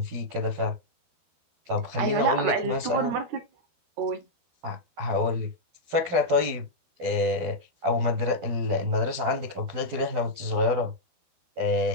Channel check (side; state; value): left; late; 12 ms